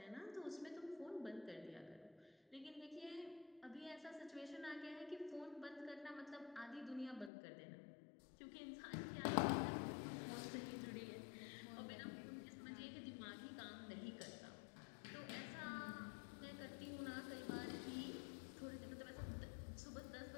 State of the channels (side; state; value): right; drops out; at 7.3 s